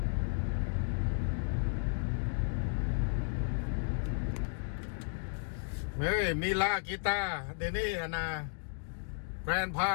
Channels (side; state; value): right; silent; digital silence